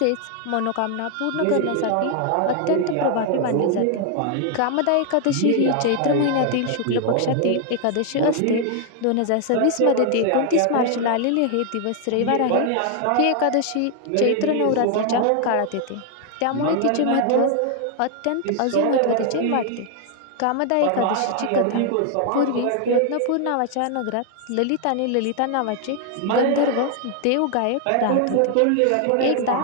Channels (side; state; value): both; different; correlation 0.00